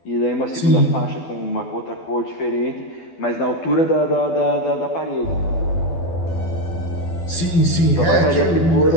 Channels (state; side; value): late; right; 12 ms